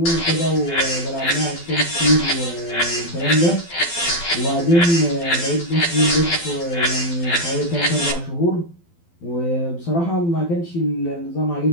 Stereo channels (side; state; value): right; late; 12 ms